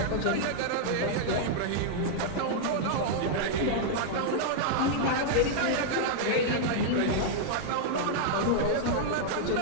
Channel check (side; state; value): both; different; correlation -0.01